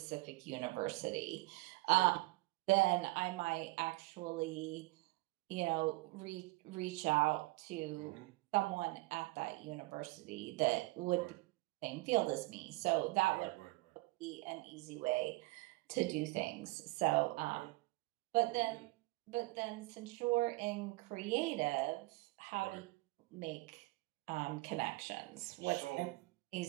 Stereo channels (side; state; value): left; quieter; 22.3 dB